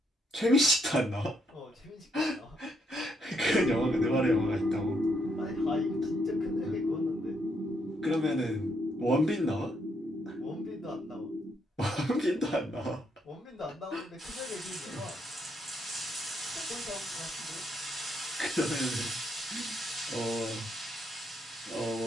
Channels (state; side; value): normal; both; correlation 0.75